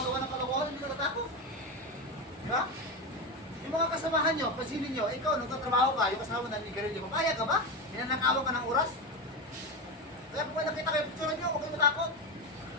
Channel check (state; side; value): normal; both; correlation 0.16